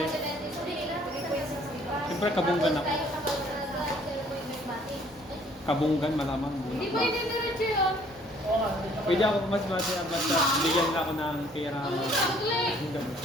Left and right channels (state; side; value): normal; both; correlation 0.59